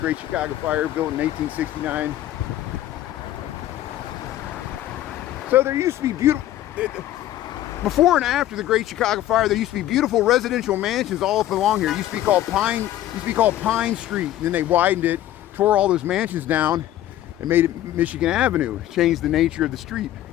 Chicago Fire, built in 1869. So there used to be beautiful, before and after the Great Chicago Fire, there used to be beautiful residential mansions all up along here. It used to be called Pine Street. And then they widened it, tore all those mansions down, and made it Michigan Avenue. Changed the nature of the street.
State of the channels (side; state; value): right; quieter; 13.4 dB